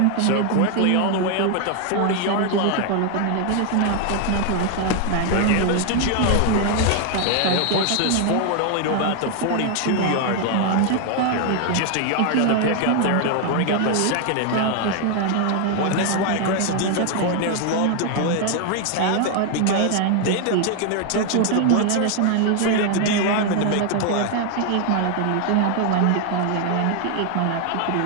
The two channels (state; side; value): different; both; correlation 0.00